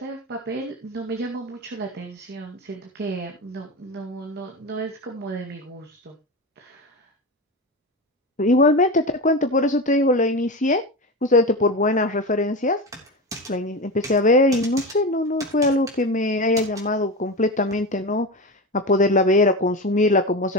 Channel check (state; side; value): normal; both; correlation 0.23